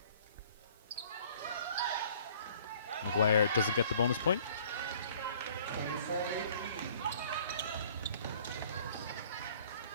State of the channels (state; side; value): inverted; both; correlation -0.55